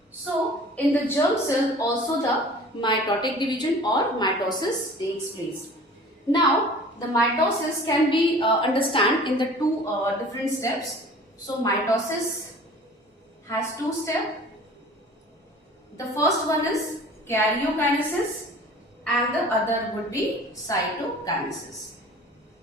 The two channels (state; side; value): normal; both; correlation 0.45